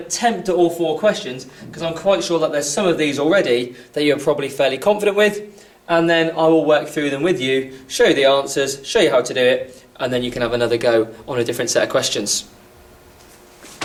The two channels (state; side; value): identical; both; correlation 1.00